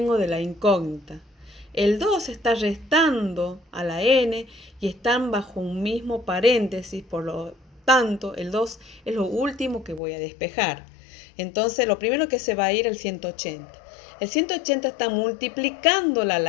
de la incógnita. El 2 está restando a la n y están bajo un mismo paréntesis, por lo tanto el 2 es lo último que voy a despejar. Entonces lo primero que se va a ir es el 180. El 180 está multiplicándola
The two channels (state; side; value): drops out; right; at 10.0 s